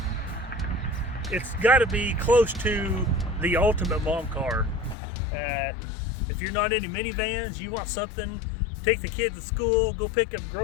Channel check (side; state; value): right; drops out; at 5.0 s